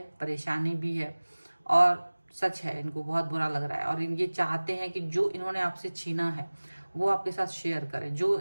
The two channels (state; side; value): inverted; both; correlation -1.00